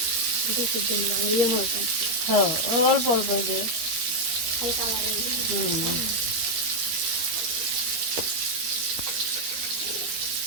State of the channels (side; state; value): left; late; 13 ms